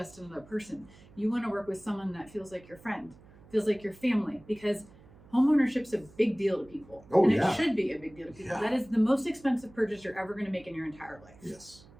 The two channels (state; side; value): noise; right; hum, 24 dB below the sound